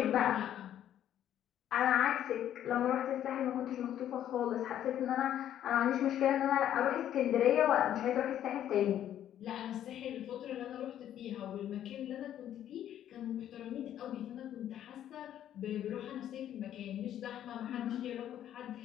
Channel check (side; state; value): right; quieter; 11.0 dB